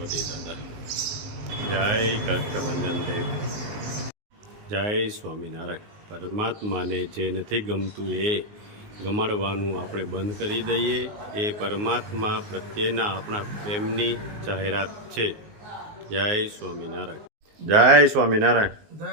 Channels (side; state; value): left; late; 19 ms